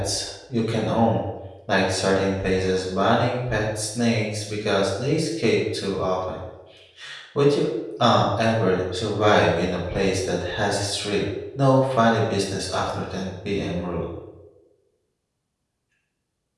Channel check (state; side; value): identical; both; correlation 1.00